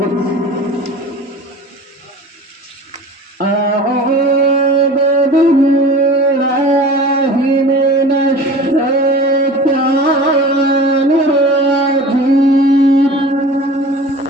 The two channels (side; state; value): both; normal; correlation 0.39